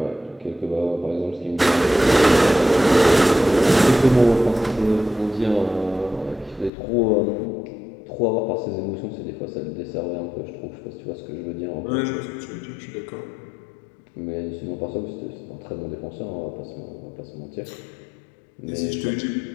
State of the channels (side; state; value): right; drops out; at 6.7 s